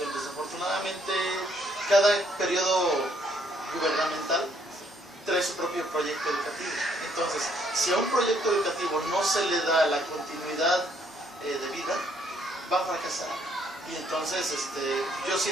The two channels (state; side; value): normal; both; correlation 0.68